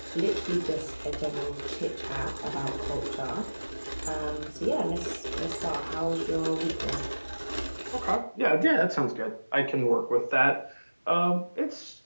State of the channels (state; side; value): inverted; both; correlation -1.00